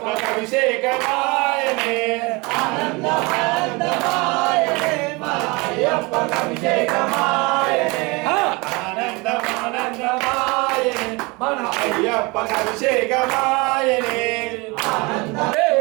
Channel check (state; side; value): quieter; left; 26.4 dB